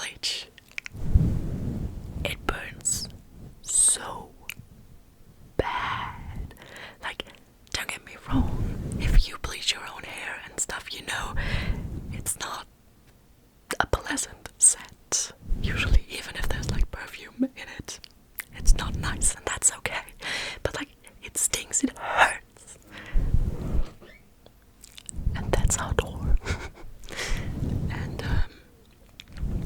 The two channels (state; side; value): identical; both; correlation 1.00